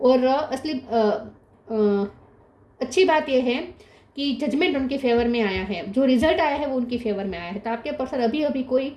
और असली अच्छी बात यह है कि जजमेंट उनके फेवर में आया है, जो रिजल्ट आया है वो उनकी फेवर में आया है। तो आपके पर्सन अभी अभी कोई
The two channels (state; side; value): identical; both; correlation 1.00